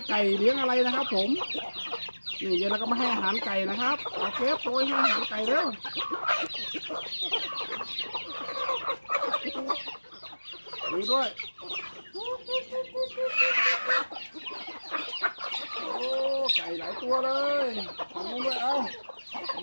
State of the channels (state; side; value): inverted; both; correlation -1.00